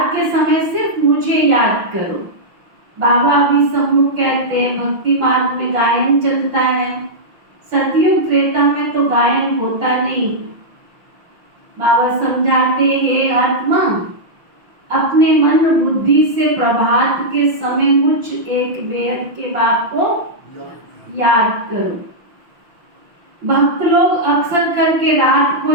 के समय सिर्फ मुझे याद करो। बाबा अभी सम्मुख कहते हैं भक्ति मार्ग में गायन चलता है, सतयुग त्रेता में तो गायन होता नहीं। बाबा समझाते हे आत्मा, अपने मन बुद्धि से प्रभात के समय मुझ एक बेहद के बाप को याद करो। भक्त लोग अक्सर करके रात को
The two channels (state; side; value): late; left; 5.9 ms